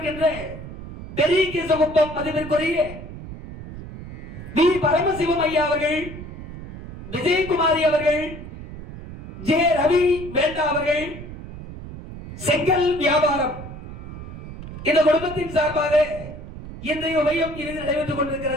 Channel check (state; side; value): noise; right; rumble, 12 dB below the sound